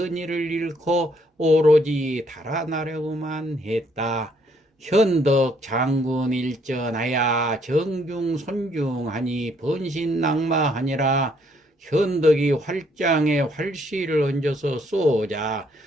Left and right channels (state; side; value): normal; both; correlation 0.68